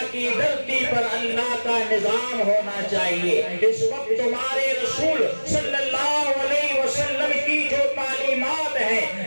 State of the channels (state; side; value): inverted; both; correlation -1.00